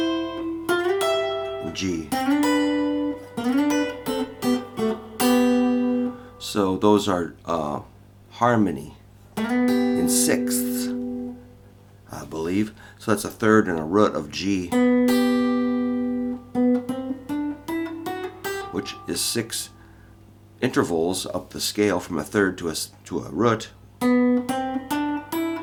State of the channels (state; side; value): identical; both; correlation 1.00